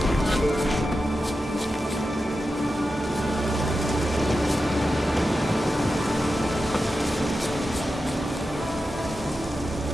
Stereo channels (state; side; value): normal; both; correlation 0.91